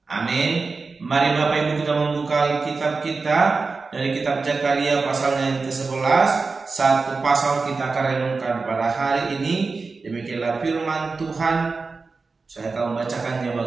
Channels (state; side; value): quieter; left; 4.2 dB